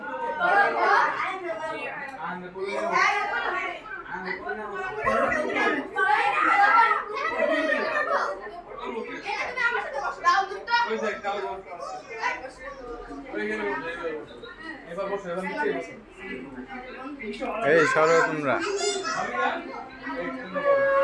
আঙ্গে বড়িয়া এই সরো তোমরা,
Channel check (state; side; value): identical; both; correlation 1.00